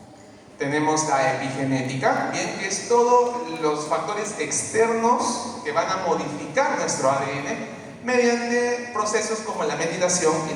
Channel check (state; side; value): identical; both; correlation 1.00